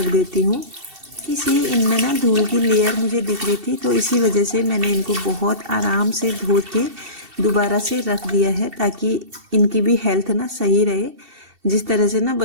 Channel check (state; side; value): late; left; 2.7 ms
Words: देती हूँ। इसी इनमें ना धूल की लेयर मुझे दिख रही थी, तो इसी वजह से मैंने इनको बहुत आराम से धो के दोबारा से रख दिया है, ताकि इनकी भी हेल्थ ना सही रहे। जिस तरह से ना